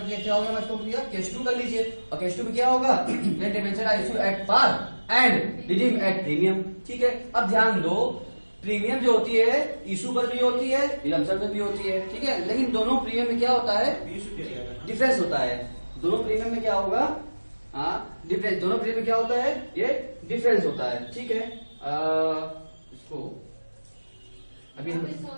क्या हो गया, मैं इसको क्लियर केस 2 कर लीजिए। और केस 2 में क्या होगा, when debenture are issue at par and redeem at premium. ठीक है, अब ध्यान दो, प्रीमियम जो होती है इशू पर भी होती है, रिडम्पशन पर भी होती है। ठीक है, लेकिन दोनों प्रीमियम में क्या होता है, डिफरेंस होता है। दोनों प्रीमियम में क्या होगा, डिफरेंस, दोनों प्रीमियम में क्या होता है, ये डिफरेंस होता है। ठीक है, इसको अभी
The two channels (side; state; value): both; inverted; correlation -1.00